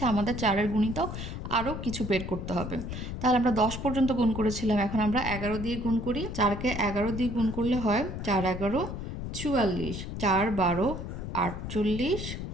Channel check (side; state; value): left; noise; rumble, 6 dB below the sound